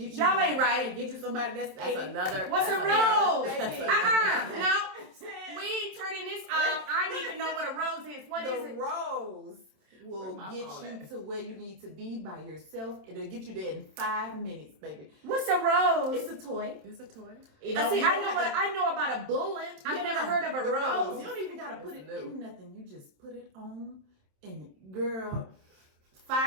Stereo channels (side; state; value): left; late; 27 ms